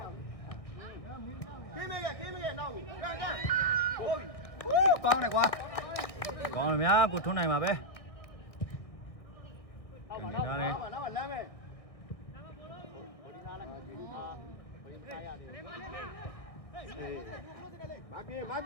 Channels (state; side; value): late; right; 1.7 ms